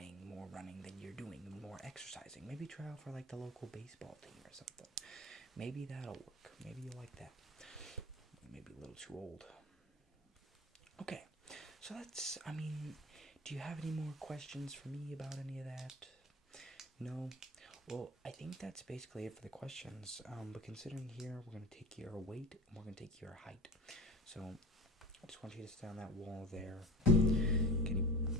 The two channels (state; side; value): normal; both; correlation 0.36